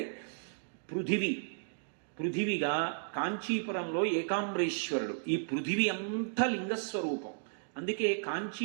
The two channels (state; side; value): silent; left; digital silence